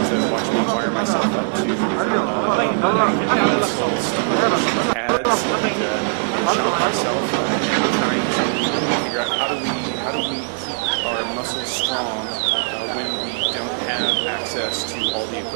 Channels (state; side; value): silent; left; digital silence